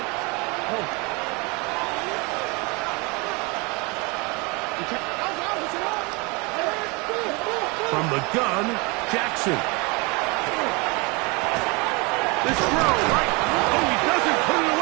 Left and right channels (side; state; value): left; quieter; 28.3 dB